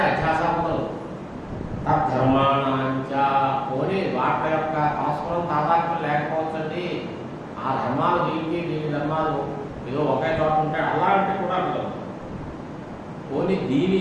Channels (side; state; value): both; identical; correlation 1.00